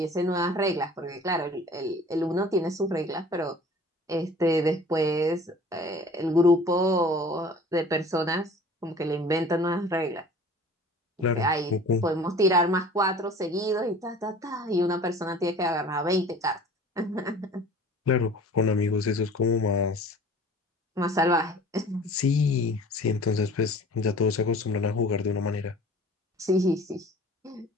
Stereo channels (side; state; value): both; normal; correlation 0.45